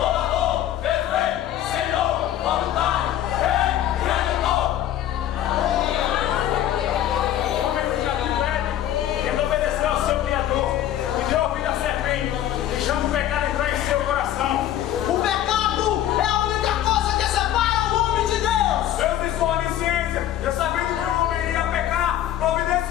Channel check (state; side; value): quieter; right; 12.0 dB